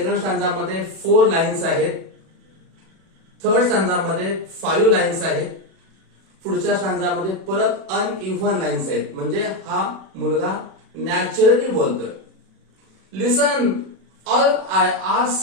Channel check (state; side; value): late; left; 36 ms